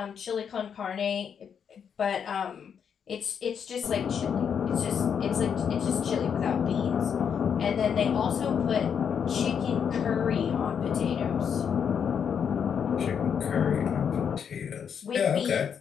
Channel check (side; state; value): right; quieter; 7.5 dB